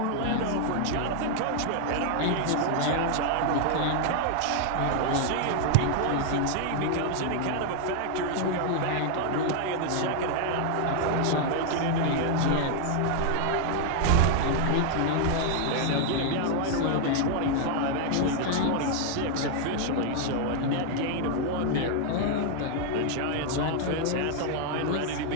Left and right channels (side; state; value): both; different; correlation 0.00